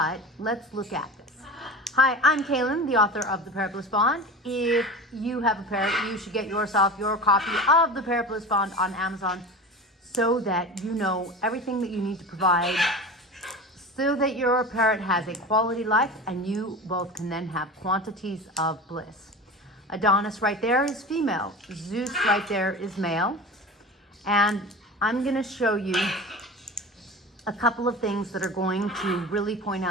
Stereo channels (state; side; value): normal; both; correlation 0.32